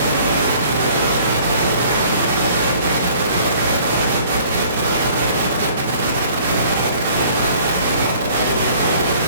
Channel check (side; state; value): both; inverted; correlation -0.54